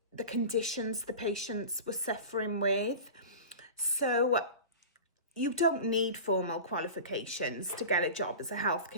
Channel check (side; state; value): both; inverted; correlation -0.33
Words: the conditions the patients were suffering with. So you don't need formal qualifications to get a job as a